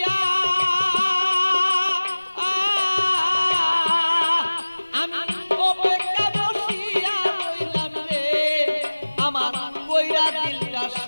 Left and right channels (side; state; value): both; inverted; correlation -1.00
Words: আমি অপেক্ষা বসিয়া রইলাম রে আমার কইরা দিলটা